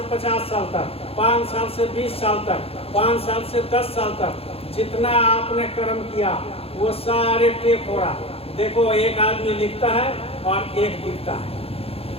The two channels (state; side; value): late; right; 0.28 ms